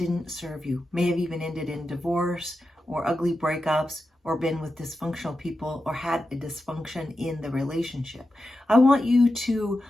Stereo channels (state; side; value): normal; both; correlation 0.90